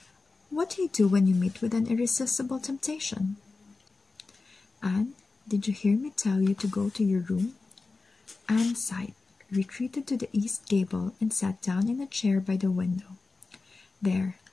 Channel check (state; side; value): quieter; right; 3.8 dB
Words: What do you do when you meet with an irresistible temptation? Anne, did you hear me tell you to go to your room? Anne sighed, retreated to the east gable, and sat down in a chair by the window. There,